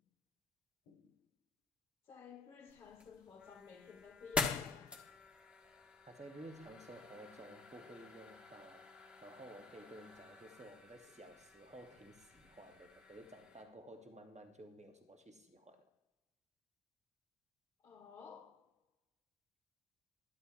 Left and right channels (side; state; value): right; quieter; 3.2 dB